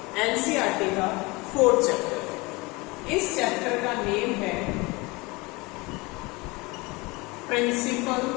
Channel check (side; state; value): right; quieter; 24.7 dB